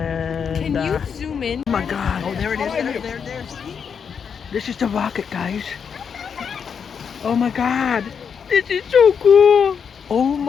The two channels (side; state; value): right; quieter; 6.8 dB